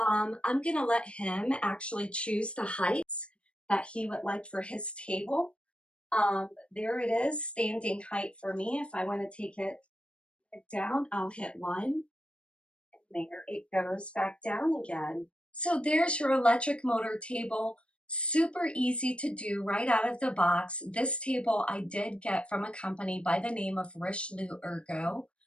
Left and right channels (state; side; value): late; right; 0.059 ms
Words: gonna let him actually choose the heights that he would like for his table. There it is, standing height for me. If I want to take it down, I'll hit 1. There it goes back down again. So there's your electric motor table. Super easy to do right out of the box. This table I did get from a company by the name of Richelieu Ergo.